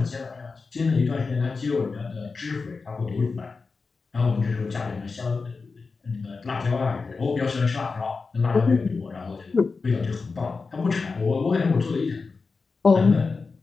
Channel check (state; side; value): quieter; right; 4.4 dB